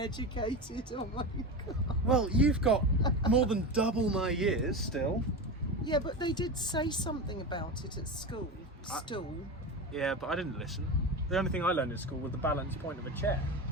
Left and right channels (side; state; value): both; normal; correlation 0.22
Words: Oh my god. Well, you've got more than double my years still. Yeah, but they did say something about it at school. Stool. Yeah, but I didn't listen. The only thing I learned in school was the balance point of a chair.